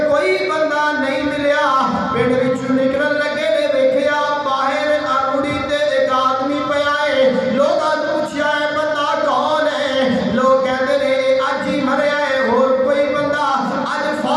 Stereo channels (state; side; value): identical; both; correlation 1.00